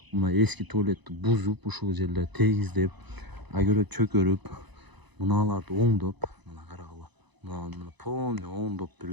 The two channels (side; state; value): left; late; 1.0 ms